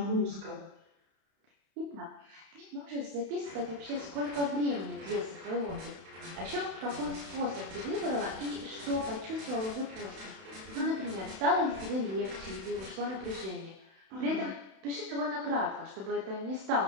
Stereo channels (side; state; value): left; late; 31 ms